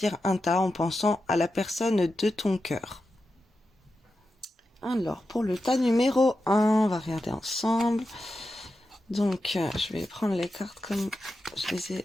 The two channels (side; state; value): both; normal; correlation 0.90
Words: un tas en pensant à la personne de ton cœur. Alors, pour le tas numéro 1, on va regarder ensemble. Donc, je vais prendre les cartes comme je les